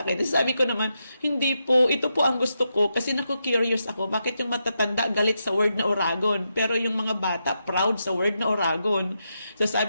akin. Sabi ko naman, hindi po, ito po ang gusto ko. Kasi naku-curious ako, bakit yung matatanda galit sa word na Oragon? Pero yung mga bata, proud sa word na Oragon. So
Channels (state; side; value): inverted; both; correlation -0.85